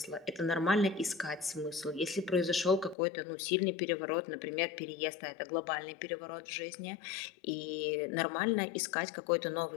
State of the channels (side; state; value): right; drops out; at 3.0 s